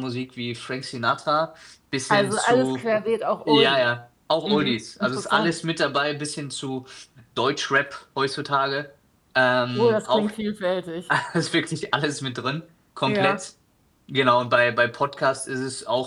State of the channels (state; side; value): identical; both; correlation 1.00